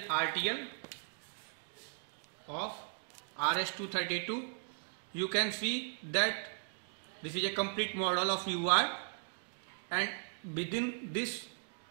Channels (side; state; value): left; silent; digital silence